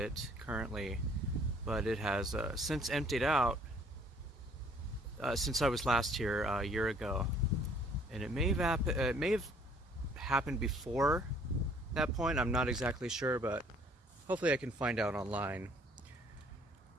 currently, but it has since emptied out since I was last here a year ago, and it may have happened before that point. I'm not exactly sure, but hopefully I can find out online.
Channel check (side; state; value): both; normal; correlation 0.59